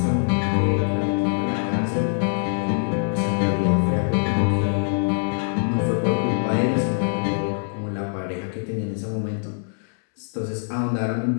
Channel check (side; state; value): right; silent; 63 dB below the other